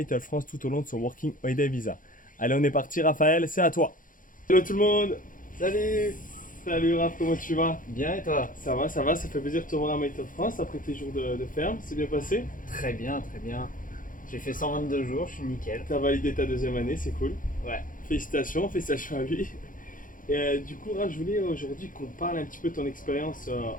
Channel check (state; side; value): late; right; 0.39 ms